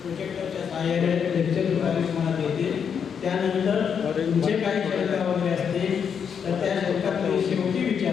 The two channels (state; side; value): quieter; right; 7.2 dB